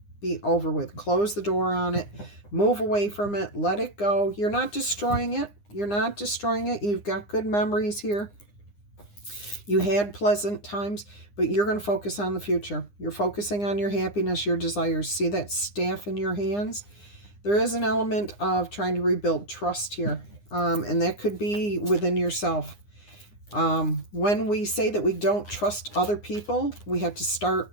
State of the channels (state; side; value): late; right; 9.8 ms